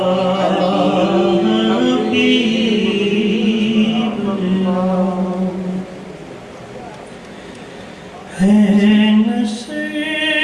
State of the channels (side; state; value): both; identical; correlation 1.00